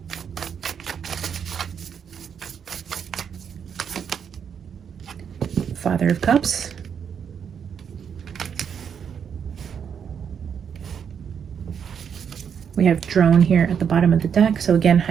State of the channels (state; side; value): quieter; left; 7.5 dB